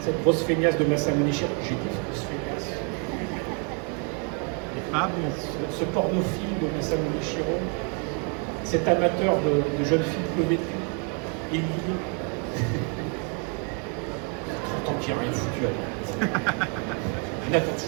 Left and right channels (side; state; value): left; quieter; 36.6 dB